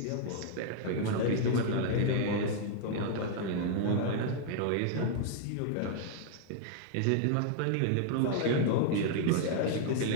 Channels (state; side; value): different; both; correlation -0.01